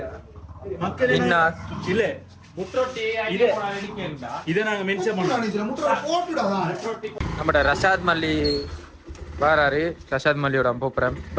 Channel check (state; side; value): identical; both; correlation 1.00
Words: மக்கள் மின்னாஸ் இல்ல இதை நாங்க மென்ஷன் பண்ணோம். நம்ம ரஷாத் மல்லி வராரு. ரஷாத் மல்லியோட போப்புறேன்